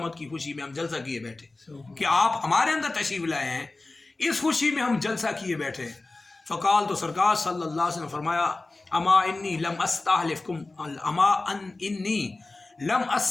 کی خوشی میں ہم جلسہ کیے بیٹھے کہ آپ ہمارے اندر تشریف لائے ہیں، اس خوشی میں ہم جلسہ کیے بیٹھے ہیں۔ فقال تو سرکار صلی اللہ علیہ وسلم فرمایا اما انی لم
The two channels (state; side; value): quieter; right; 3.2 dB